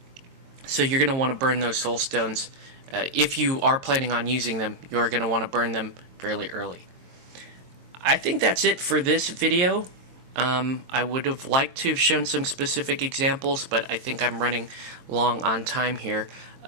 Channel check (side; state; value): left; late; 23 ms